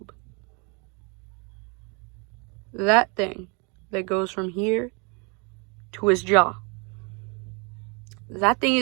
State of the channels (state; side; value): quieter; left; 33.0 dB